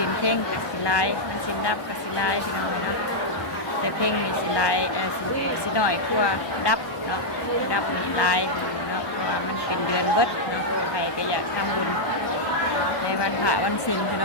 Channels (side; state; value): right; late; 1.2 ms